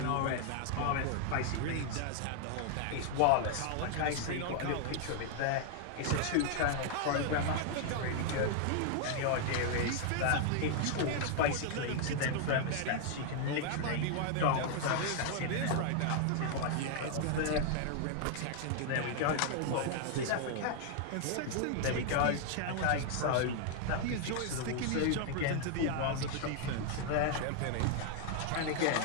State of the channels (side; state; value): both; different; correlation 0.00